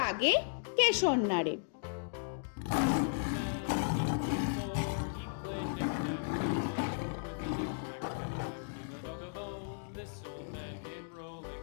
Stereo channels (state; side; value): silent; right; digital silence